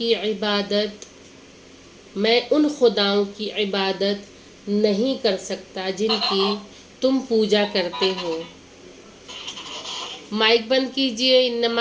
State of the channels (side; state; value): both; identical; correlation 1.00